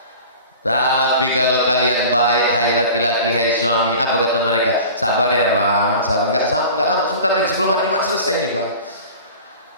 Tapi kalau kalian baik, hai laki-laki, hai suami, apa kata mereka? Sabar ya bang, sabar. Enggak lama, sebentar lagi sebelum hari Jumat selesai nih bang.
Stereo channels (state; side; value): inverted; both; correlation -0.39